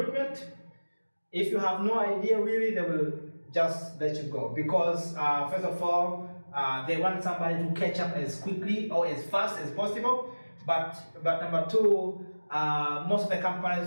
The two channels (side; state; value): both; inverted; correlation -1.00